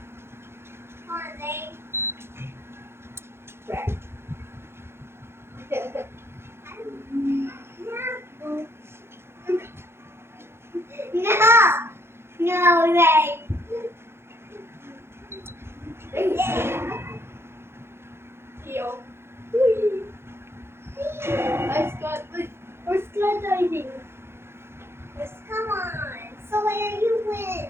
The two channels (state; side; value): late; left; 0.12 ms